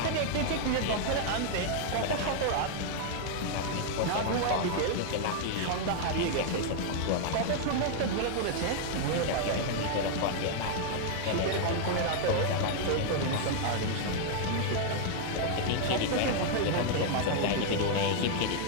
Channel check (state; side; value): different; both; correlation 0.00